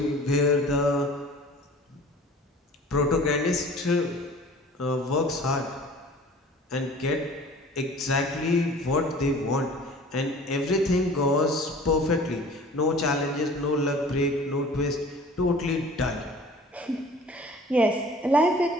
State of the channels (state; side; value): normal; both; correlation 0.46